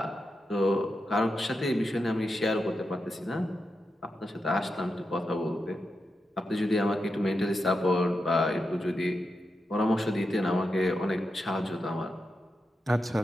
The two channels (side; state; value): both; normal; correlation 0.88